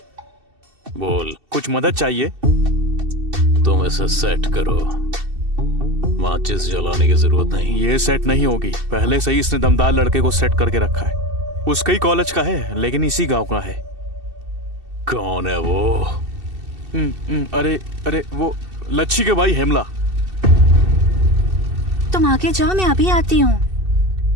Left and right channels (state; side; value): late; left; 2.7 ms